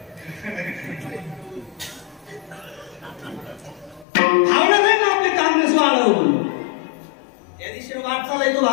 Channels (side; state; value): right; drops out; at 4.0 s